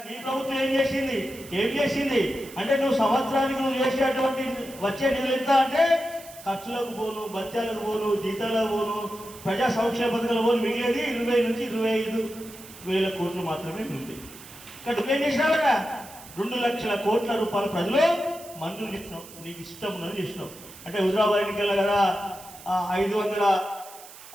నీ ప్రభుత్వం ఏం చేసింది అంటే నువ్వు సంవత్సరానికి నువ్వు చేసేటువంటి వచ్చే నిధులు ఎంత అంటే ఖర్చులకు పోను, బత్యాలకు పోను, జీతాలకు పోను, ప్రజా సంక్షేమ పథకాలు పోను, మిగిలేది 20 నుంచి 25 వేల కోట్లు మాత్రమే ఉంది. ఇక్కడ నువ్వేం చేసినావు కదా, 2 లక్షల కోట్ల రూపాయల ప్రజలు మంజూరు చేసినావు, నీకు ఇష్టం ఉన్నది చేసినావు. అంటే హుజరాబాద్ ఎన్నికల్లో కదా 500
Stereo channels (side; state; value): right; noise; hiss, 18 dB below the sound